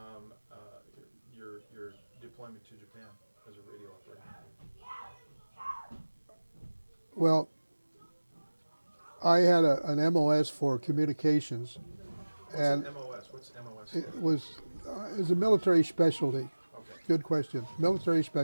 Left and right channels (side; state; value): both; inverted; correlation -1.00